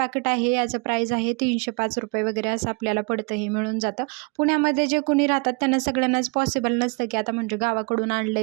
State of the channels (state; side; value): quieter; left; 33.0 dB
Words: आहे याचं प्राईस आहे 305 रुपये वगैरे असं आपल्याला पडतं, हे मिळून जातं. पुण्यामध्ये जे कोणी राहतात त्यांना सगळ्यांनाच पॉसिबल नसतं की आता म्हणजे गावाकडून आणलं